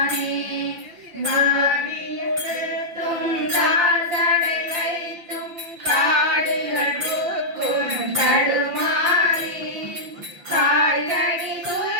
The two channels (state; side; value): late; left; 5.9 ms